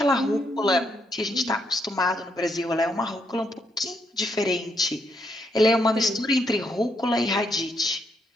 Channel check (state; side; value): normal; both; correlation 0.76